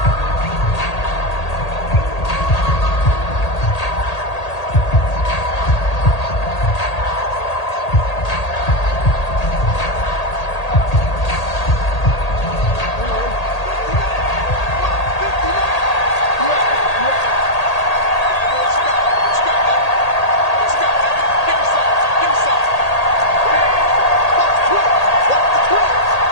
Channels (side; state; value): right; late; 1.8 ms